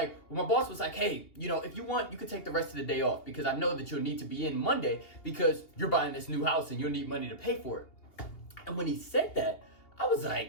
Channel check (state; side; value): late; right; 2.8 ms